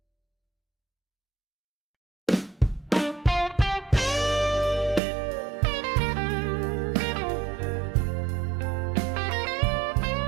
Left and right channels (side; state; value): left; drops out; at 5.0 s